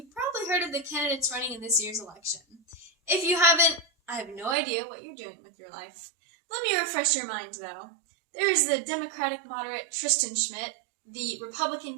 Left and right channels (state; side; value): drops out; left; at 4.5 s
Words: probably heard of the candidates running in this year's election. If you haven't, I have no idea what you're doing with your life. Let me refresh your mind, though. There is the Democratic moderate Tristan Schmidt, the